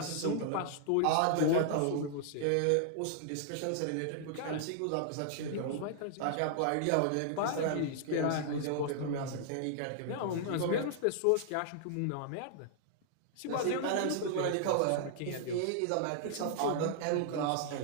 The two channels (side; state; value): both; different; correlation -0.01